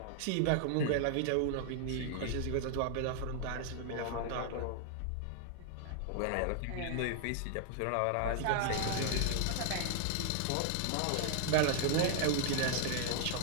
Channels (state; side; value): different; both; correlation 0.00